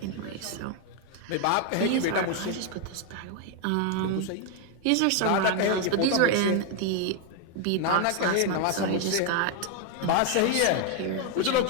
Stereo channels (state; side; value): different; both; correlation 0.01